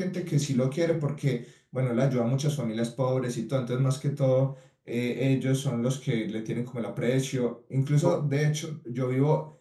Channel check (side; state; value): both; identical; correlation 1.00